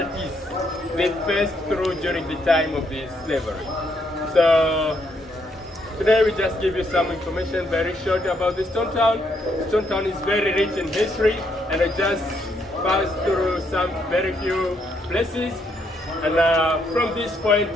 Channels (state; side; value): normal; both; correlation 0.74